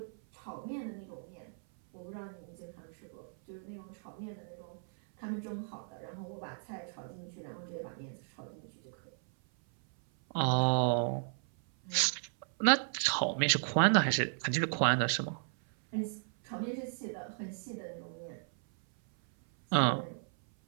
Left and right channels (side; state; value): left; silent; 55 dB below the other